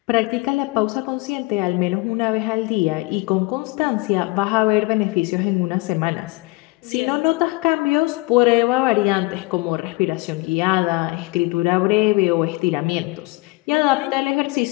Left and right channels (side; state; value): right; quieter; 24.3 dB